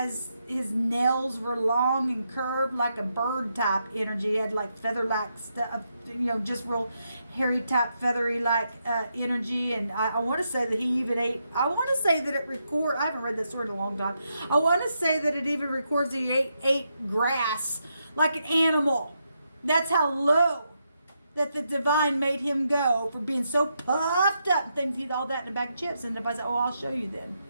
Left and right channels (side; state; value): both; inverted; correlation -0.82